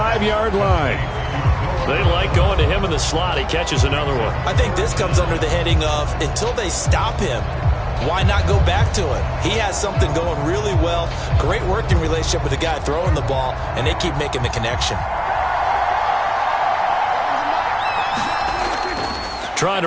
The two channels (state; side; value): identical; both; correlation 1.00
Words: line. They like going to him in the slot. He catches another one. I think this comes under the heading of until they stop him, why not go back to it? He has something going really well. Great working relationship with the guy throwing the ball, and they keep making the connection. Trying